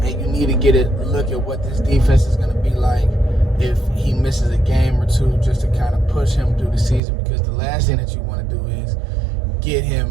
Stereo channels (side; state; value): left; drops out; at 7.0 s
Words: you need to get a look at what this defense is going to be like if he misses a game or two, just to kind of push him through the season, because the last thing that you want to do is get him